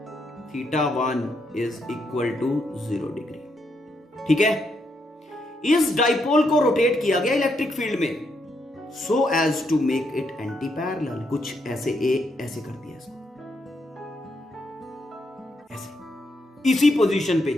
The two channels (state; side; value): normal; both; correlation 0.78